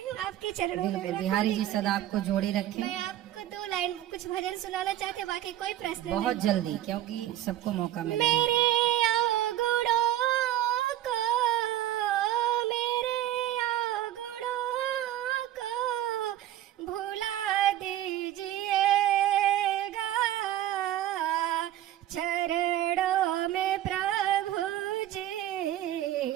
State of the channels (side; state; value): left; quieter; 12.9 dB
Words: हूँ आपके चरणों में। बिल्कुल, बिहारी जी सदा आपको जोड़े रखें। मैं आपको 2 लाइन कुछ भजन सुनाना चाहते, बाकी कोई प्रश्न बहुत नहीं। जल्दी, क्योंकि सबको मौका मिले। मेरे अवगुणों को, मेरे अवगुणों को भुला दीजिएगा,